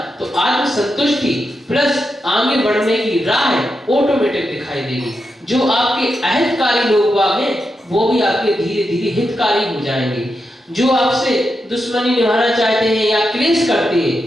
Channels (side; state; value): both; normal; correlation 0.86